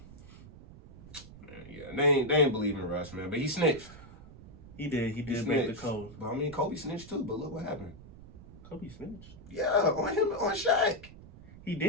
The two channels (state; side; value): noise; right; rumble, 18 dB below the sound